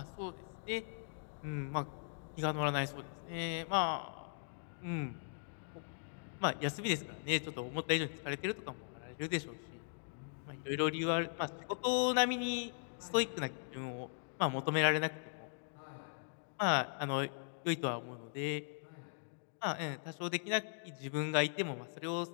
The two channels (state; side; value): silent; right; digital silence